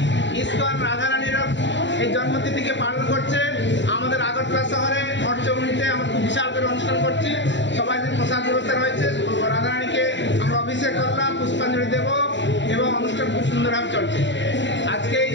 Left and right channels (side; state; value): right; late; 0.53 ms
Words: ইসকন রাধারানীর এই জন্মতিথিকে পালন করছে। আমাদের আগরতলা শহরে মঠচৌমুনিতে আমরা খুব বিশাল করে অনুষ্ঠান করছি। সবাই প্রসাদ ব্যবস্থা রয়েছে। রাধারানীকে আমরা অভিষেক করলাম, পুষ্পাঞ্জলি দেব এবং অনুষ্ঠান খুব সুন্দরভাবে চলছে। আজকে এই